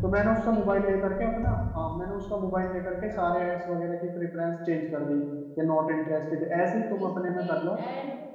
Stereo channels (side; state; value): both; identical; correlation 1.00